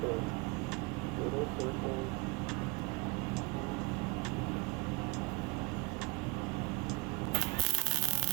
those little circles.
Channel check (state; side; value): quieter; left; 28.1 dB